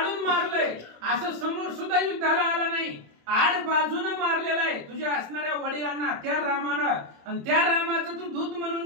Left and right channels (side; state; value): left; late; 27 ms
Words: मारलंय, असं समोर सुद्धा युद्धाला आला नाही, आड बाजूनं मारलेला आहे तुझ्या असणाऱ्या वडिलांना त्या रामानं, आणि त्या रामाचं तू दूत